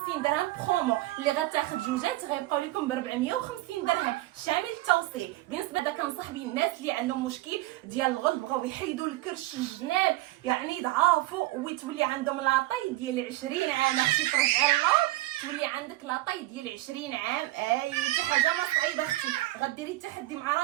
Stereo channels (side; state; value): left; quieter; 17.6 dB